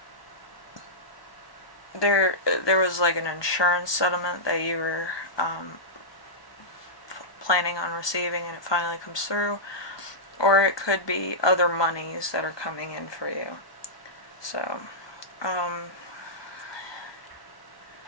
there was like an insurance settlement that you were planning on receiving and it finally comes through, or it could be other monies that are coming in for you. So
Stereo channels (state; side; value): late; right; 1.2 ms